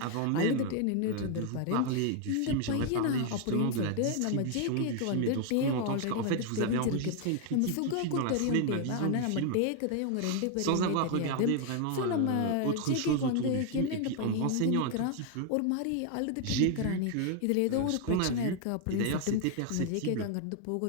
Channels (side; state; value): both; different; correlation 0.00